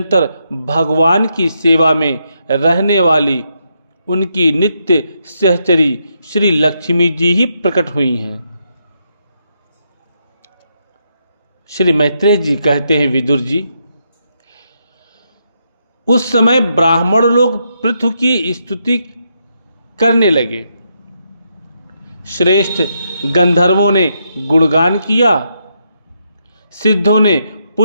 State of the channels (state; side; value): inverted; both; correlation -0.79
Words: भगवान की सेवा में रहने वाली उनकी नित्य सहचरी श्री लक्ष्मी जी ही प्रकट हुई हैं। श्री मैत्रेय जी कहते हैं, विदुर जी, उस समय ब्राह्मण लोग पृथु की स्तुति करने लगे। श्रेष्ठ गंधर्वों ने गुणगान किया, सिद्धों ने